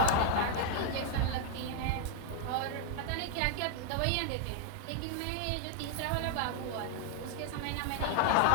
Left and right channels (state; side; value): different; both; correlation 0.00